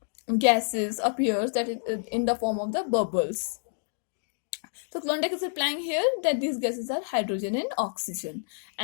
gases appears that in the form of the bubbles. So Klondike is replying here that these gases are hydrogen and oxygen,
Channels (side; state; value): right; silent; 59 dB below the other